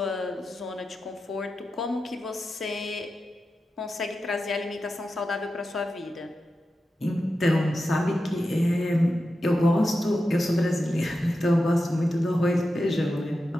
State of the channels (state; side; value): normal; both; correlation 0.91